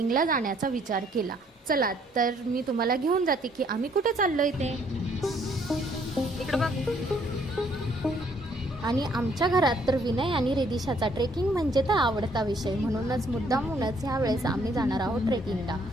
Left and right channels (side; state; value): both; normal; correlation 0.65